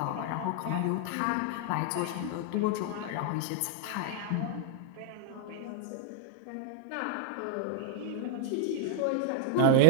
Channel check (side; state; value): both; different; correlation 0.00